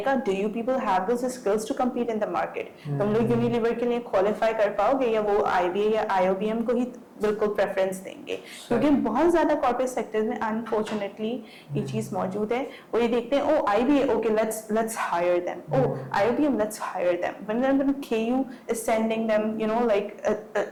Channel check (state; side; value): identical; both; correlation 1.00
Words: do you people have those skills to compete in the market? तुम लोग Unilever के लिए qualify कर पाओगे या वो IBA या IOBM को ही बिल्कुल प्रेफरेंस देंगे? क्योंकि बहुत ज्यादा कॉर्पोरेट सेक्टर्स में अनफॉर्चुनेटली ये चीज मौजूद है। वो ये देखते हैं oh IBA, okay let's hire them, oh IOBM let's hire them, when KU is sending them like